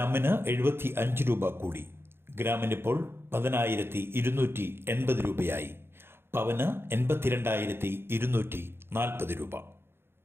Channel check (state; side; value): late; left; 0.11 ms